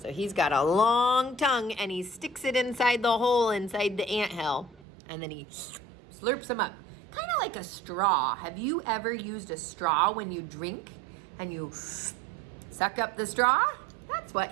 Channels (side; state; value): left; drops out; at 4.9 s